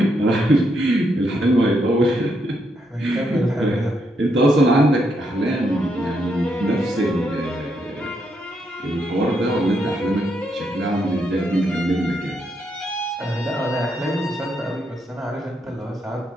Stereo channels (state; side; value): normal; both; correlation 0.78